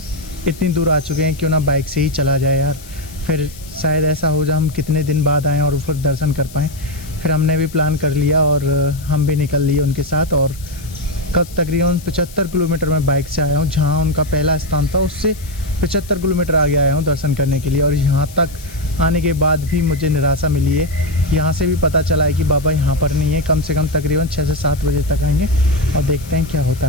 इतनी दूर आ चुके हैं, क्यों ना बाइक से ही चला जाए यार, फिर शायद ऐसा हो जाए हम कितने दिन बाद आएँ और फिर दर्शन कर पाएँ। फिर हमने भी प्लान कर लिया और हम भी निकल लिए उनके साथ और कब तकरीबन 75 किलोमीटर में बाइक से आया हूँ। जहाँ उनका पहला स्थान था उससे 75 किलोमीटर आगे आया हूँ दर्शन करने के लिए। और यहाँ तक आने के बाद भी मुझे निराशा मिली है। यहाँ से भी पता चला है कि बाबा यहाँ पर नहीं है। कम से कम तकरीबन 6 से 7 बजे तक आएंगे और देखते हैं क्या होता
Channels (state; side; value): noise; left; hiss, 19 dB below the sound